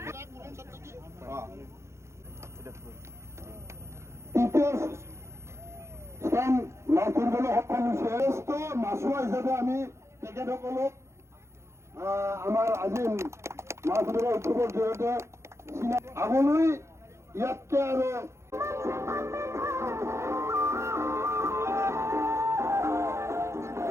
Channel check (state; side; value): late; left; 0.13 ms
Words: তৃতীয় স্থান লাভ কৰিবলৈ সক্ষম হৈছে। শ্ৰেষ্ঠ মাছুৱা হিচাপে আমি তেখেতসকলক আমাৰ আজি মাছ ধৰা উৎসৱৰ জৰিয়তে আগলৈ ইয়াতকৈ আৰু